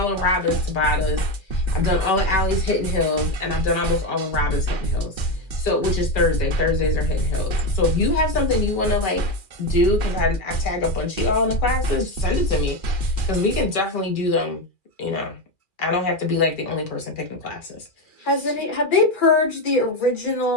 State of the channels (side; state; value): right; late; 2.4 ms